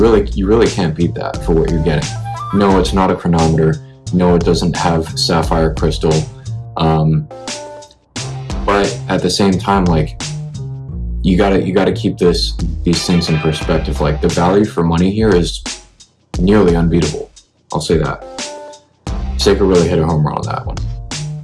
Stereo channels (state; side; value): identical; both; correlation 1.00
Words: can't beat that for what you're getting. No, it's not a chronometer. No, it doesn't have sapphire crystal. But at the same time, like you gotta keep these things in perspective. Like the value for money here is nearly unbeatable. I'll say that. Seiko really hit a home run on that one.